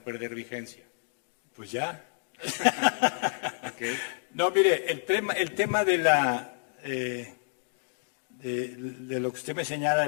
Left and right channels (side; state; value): right; silent; digital silence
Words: perder vigencia? Pues ya. Okay. No, mire, el tema de lo que usted me señala,